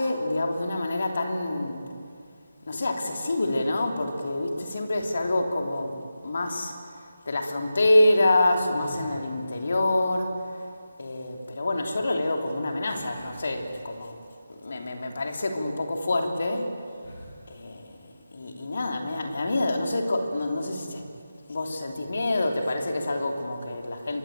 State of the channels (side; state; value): both; inverted; correlation -0.93